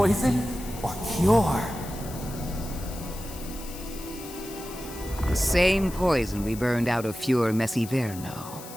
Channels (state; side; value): noise; left; hiss, 14 dB below the sound